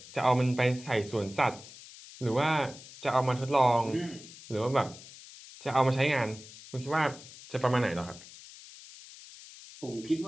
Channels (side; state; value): left; noise; hiss, 18 dB below the sound